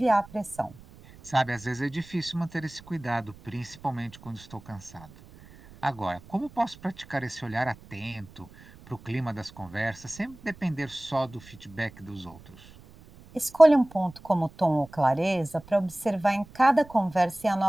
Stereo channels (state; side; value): noise; right; rumble, 22 dB below the sound